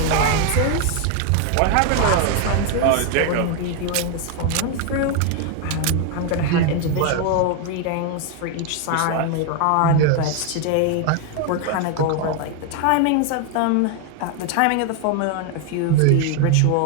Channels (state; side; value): different; both; correlation 0.01